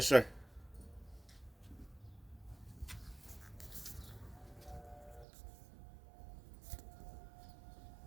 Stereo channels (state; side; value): drops out; left; at 5.2 s